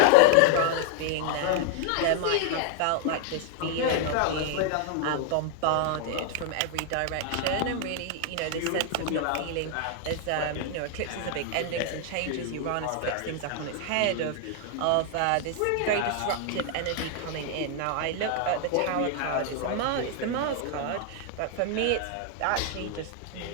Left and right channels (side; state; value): both; different; correlation 0.00